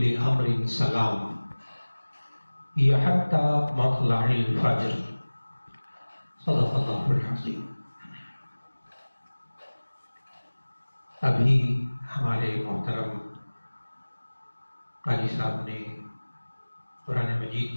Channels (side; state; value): both; inverted; correlation -1.00